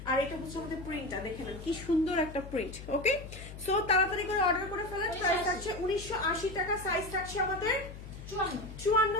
আর এটা হচ্ছে আমাদের প্রিন্টটা দেখে নেন কি সুন্দর একটা প্রিন্ট। ওকে, সো তাড়াতাড়ি করে অর্ডার করে ফেলেন। প্রাইস থাকছে 1980 টাকা, সাইজ থাকছে আমাদের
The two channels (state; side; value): noise; left; hum, 13 dB below the sound